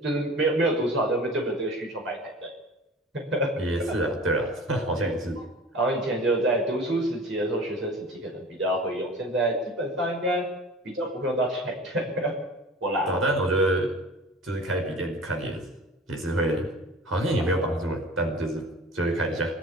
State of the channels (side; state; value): both; normal; correlation 0.40